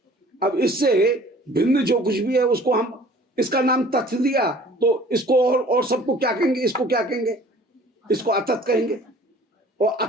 अब इससे भिन्न जो कुछ भी है उसको हम, इसका नाम तत् दिया, तो इसको और सबको क्या कहेंगे, इसको क्या कहेंगे, इसको अतत् कहेंगे। और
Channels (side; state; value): both; normal; correlation 0.50